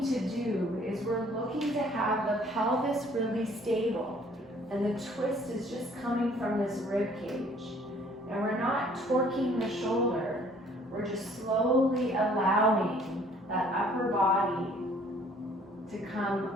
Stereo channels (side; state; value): both; normal; correlation 0.58